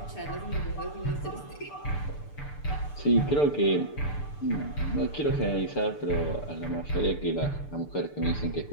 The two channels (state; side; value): late; right; 6.8 ms